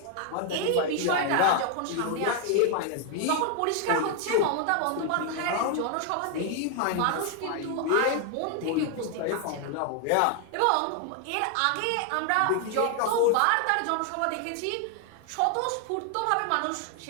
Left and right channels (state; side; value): different; both; correlation 0.00